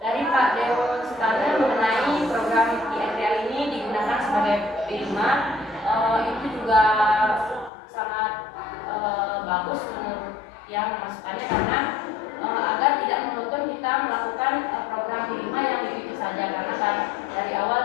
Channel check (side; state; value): right; drops out; at 7.7 s